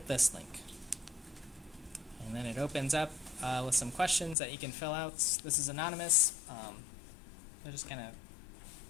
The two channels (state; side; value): drops out; right; at 4.4 s